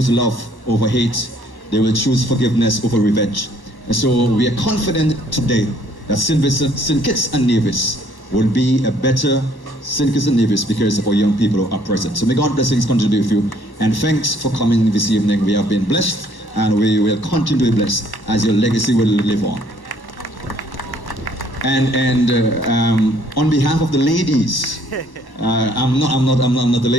love over hate, they will choose forgiveness over revenge. And so we are confident today that St. Vincent, St. Kitts and Nevis will be a better St. Kitts and Nevis because of our young people who are present. So may God's blessings continue with you, and thanks for coming this evening. We have been blessed, and we will continue to be blessed as your legacy will live on. And on behalf of the ladies, I'm not the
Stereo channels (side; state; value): right; late; 1.1 ms